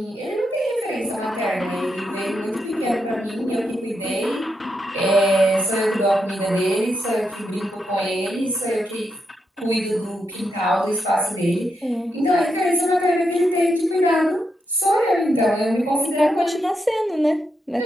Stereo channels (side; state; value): both; normal; correlation 0.83